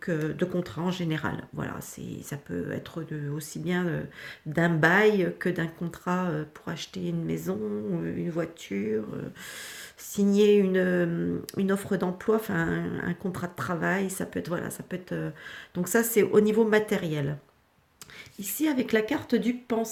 contrat en général. Voilà, ça peut être aussi bien d'un bail que d'un contrat pour acheter une maison, une voiture, signer une offre d'emploi, enfin un contrat de travail, ça peut être, voilà, ça peut être... donc ça, c'est au niveau matériel. Ici, avec la carte du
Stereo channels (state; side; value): identical; both; correlation 1.00